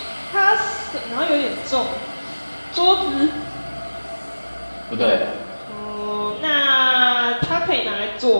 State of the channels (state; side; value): inverted; both; correlation -1.00